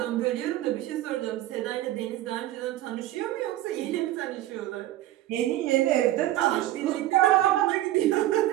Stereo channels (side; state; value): left; quieter; 14.5 dB